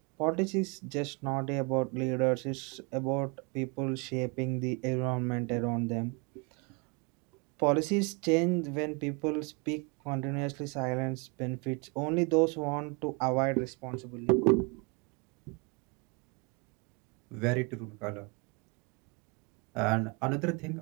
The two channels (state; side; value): quieter; left; 32.0 dB